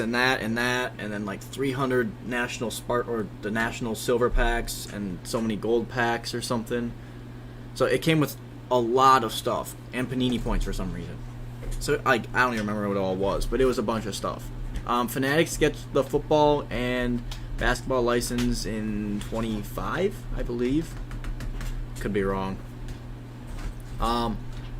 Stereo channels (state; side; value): identical; both; correlation 1.00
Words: that and that, and then like 300 national the national silver packs and so many gold packs or something. So it came with a lot of stuff and Panini points for some reason. So I don't even remember what it all was, but it was a bunch of stuff. Fanatics gets the football and basketball license in 25, I believe. Could be wrong.